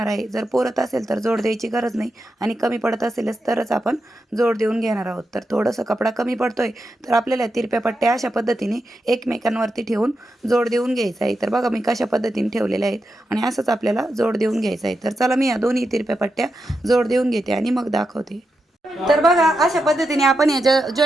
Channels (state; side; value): normal; both; correlation 0.87